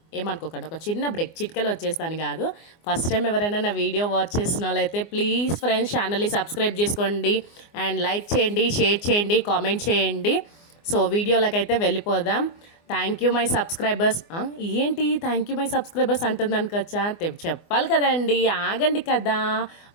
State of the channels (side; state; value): right; late; 24 ms